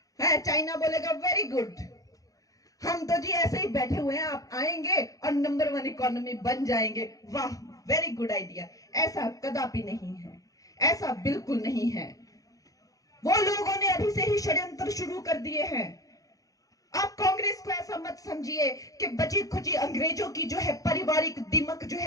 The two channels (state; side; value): late; right; 0.17 ms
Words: चाइना बोलेगा वेरी गुड, हम तो जी ऐसे ही बैठे हुए हैं, आप आएंगे और नंबर 1 इकोनॉमी बन जाएंगे, वाह वेरी गुड आइडिया। ऐसा कदापि नहीं है, ऐसा बिल्कुल नहीं है। वो लोगों ने अभी शुरू से ही षड्यंत्र शुरू कर दिए हैं। आप कांग्रेस को ऐसा मत समझिए कि बची खुची अंग्रेजों की जो है पारिवारिक दिमक जो